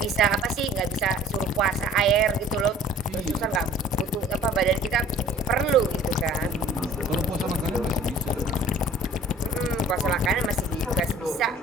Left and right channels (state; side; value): normal; both; correlation 0.50